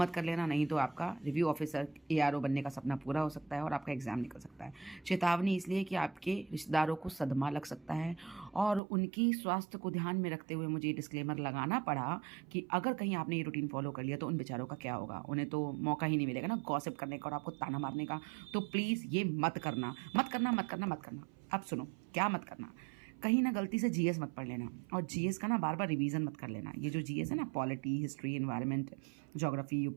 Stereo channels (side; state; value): left; drops out; at 8.8 s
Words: कर लेना, नहीं तो आपका रिव्यू ऑफिसर एआरओ बनने का सपना पूरा हो सकता है और आपका एग्ज़ाम निकल सकता है। चेतावनी इसलिए कि आपके रिश्तेदारों को सदमा लग सकता है और उनकी स्वास्थ्य को ध्यान में रखते हुए मुझे डिस्क्लेमर लगाना पड़ा कि अगर कहीं आपने ये रूटीन फॉलो कर लिया तो उन बेचारों का क्या होगा। उन्हें तो मौका ही नहीं मिलेगा ना गॉसिप करने का और आपको ताना मारने का। तो प्लीज़ ये मत करना, मत करना, मत करना, मत करना। अब सुनो, क्या मत करना। कहीं ना गलती से जीएस मत पढ़ लेना और जीएस का ना बार बार रिवीजन मत कर लेना। ये जो जीएस है ना, polity, history, environment, geography,